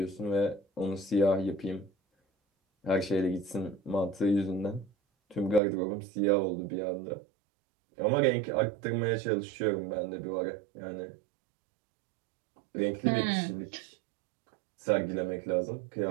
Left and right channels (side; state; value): left; drops out; at 5.6 s